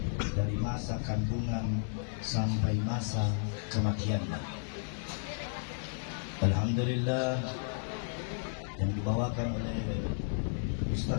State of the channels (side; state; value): right; silent; digital silence